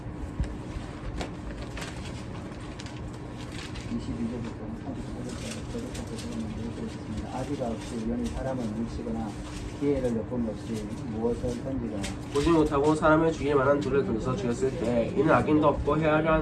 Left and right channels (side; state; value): both; identical; correlation 1.00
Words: 22절부터 35절까지 되었습니다. 아비가 없이 우연히 사람을 물치거나 기회를 엿봄 없이 무엇을 던지거나 보지 못하고 사람을 죽일 만한 돌을 던져서 죽였을 때 이는 악인도 없고 헤아려